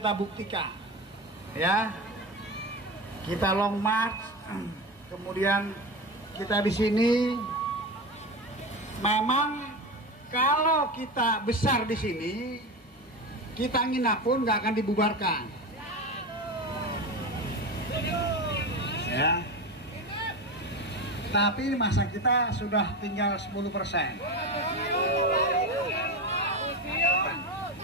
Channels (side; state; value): both; normal; correlation 0.23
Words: buktikan, ya. Kita long march, kemudian kita di sini. Memang kalau kita besar di sini, kita nginap pun nggak akan dibubarkan, ya. Tapi masa kita sudah tinggal 10%.